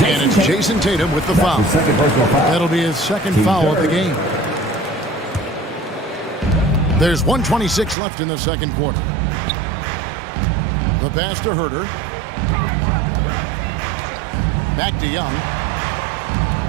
And it's Jason Tatum with the foul. That'll be his second foul of the game. There's 1:26 left in the second quarter. The pass to Herter. Back to Young.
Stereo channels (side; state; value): left; drops out; at 8.0 s